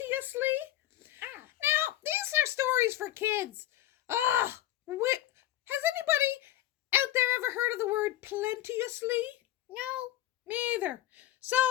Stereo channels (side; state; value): right; quieter; 13.9 dB